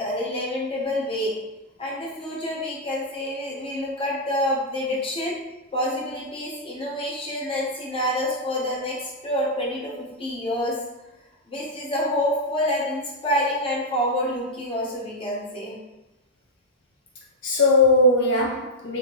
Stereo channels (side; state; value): both; normal; correlation -0.02